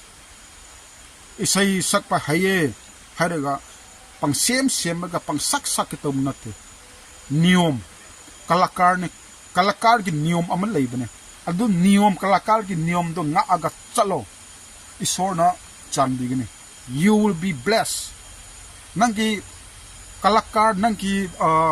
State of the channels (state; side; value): identical; both; correlation 1.00